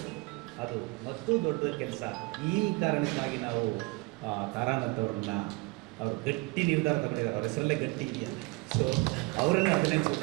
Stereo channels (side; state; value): left; quieter; 25.3 dB